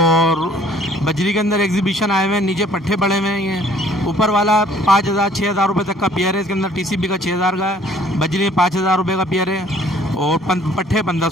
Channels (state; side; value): normal; both; correlation 0.57